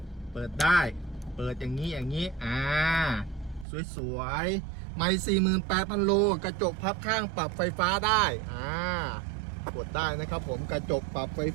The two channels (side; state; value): left; drops out; at 3.7 s